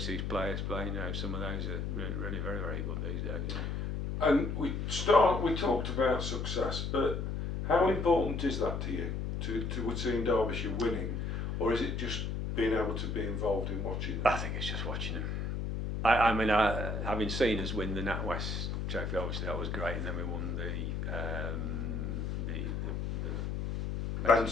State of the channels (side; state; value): left; noise; hum, 2 dB below the sound